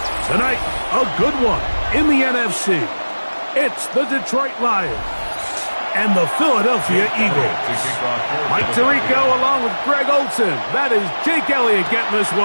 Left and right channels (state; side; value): inverted; both; correlation -1.00